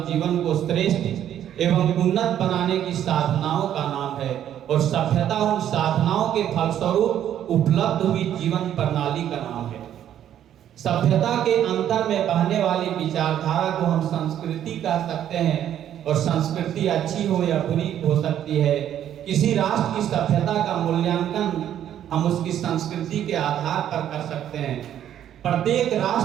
जीवन को श्रेष्ठ एवं उन्नत बनाने की साधनाओं का नाम है, और सभ्यता उन साधनाओं के फलस्वरूप उपलब्ध हुई जीवन प्रणाली का नाम है। सभ्यता के अंतर में बहने वाली विचारधारा को हम संस्कृति कह सकते हैं, और संस्कृति अच्छी हो या बुरी हो सकती है। किसी राष्ट्र की सभ्यता का मूल्यांकन हम उसकी संस्कृति के आधार पर कर सकते हैं। प्रत्येक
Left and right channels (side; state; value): left; quieter; 10.7 dB